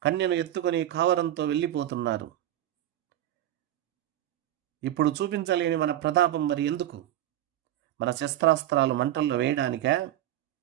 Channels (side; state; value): left; quieter; 12.8 dB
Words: కన్యను ఎత్తుకొని కావరంతో వెళ్ళిపోతున్నారు. ఇప్పుడు చూపించలేని మన ప్రతాపం మరి ఎందుకు? మన శస్త్రాస్త్రాలు మంటల్లో వేయడానికా?